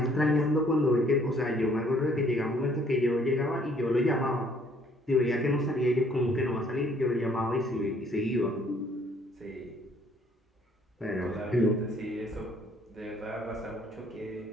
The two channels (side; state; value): both; normal; correlation 0.62